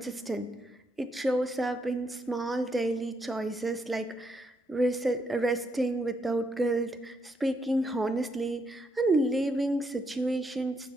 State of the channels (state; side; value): normal; both; correlation 0.78